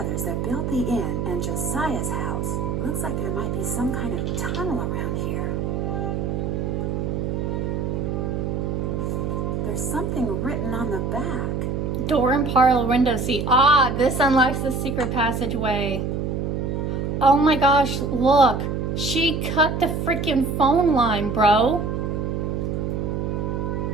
that built the inn and Josiah's house. Looks like there might be some kind of tunnel around here. There's something written on the back. Door and parlor window seat. Ah, this unlocks the secret passageway. Oh my gosh, look. She cut the freaking phone line, bro.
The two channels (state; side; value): noise; right; hum, 1 dB below the sound